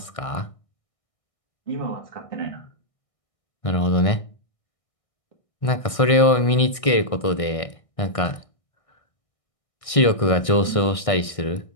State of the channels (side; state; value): right; late; 1.6 ms